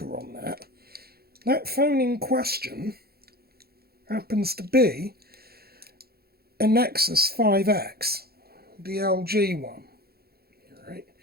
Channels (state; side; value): late; left; 0.45 ms